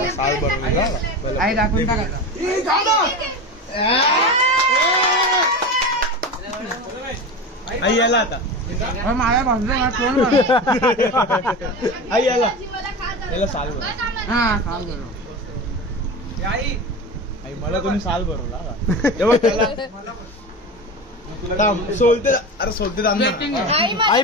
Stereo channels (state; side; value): normal; both; correlation 0.26